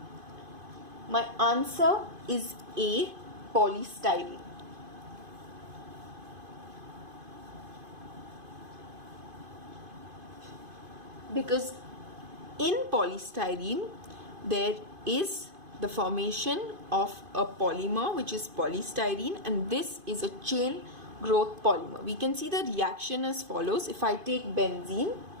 My answer is A, polystyrene. Because in polystyrene there is the formation of a polymer which is polystyrene, and this is a chain growth polymer. We can see the reaction as follows. If I take benzene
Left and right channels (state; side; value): late; left; 2.5 ms